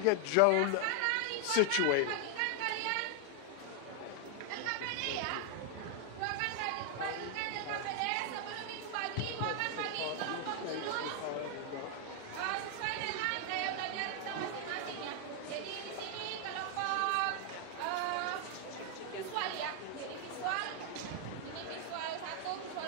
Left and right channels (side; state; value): both; different; correlation 0.00